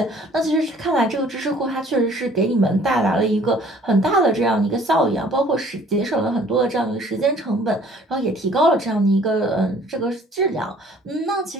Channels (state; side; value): normal; both; correlation 0.55